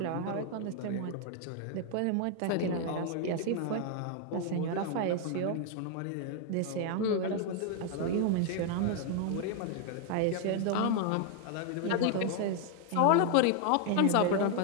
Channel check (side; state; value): both; different; correlation 0.00